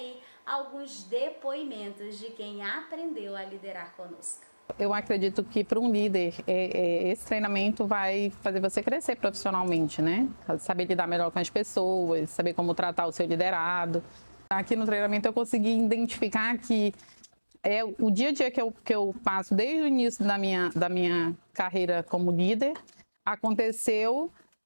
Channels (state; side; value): inverted; both; correlation -1.00